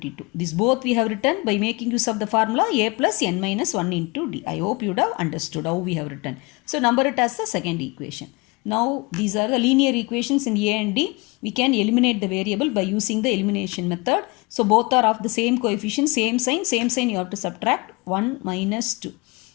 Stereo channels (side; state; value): right; quieter; 26.4 dB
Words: This both we have written by making use of the formula A plus n minus 1 into D. I hope you would have understood how we have written. So number it as the second equation. Now these are the linear equations in A and D. We can eliminate the variable by using the elimination method. So both are of the same coefficient, same sign you have to subtract 1 minus 2.